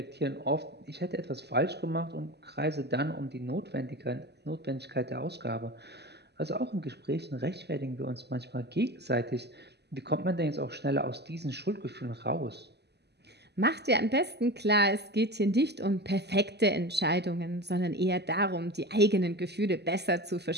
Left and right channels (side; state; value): left; late; 0.49 ms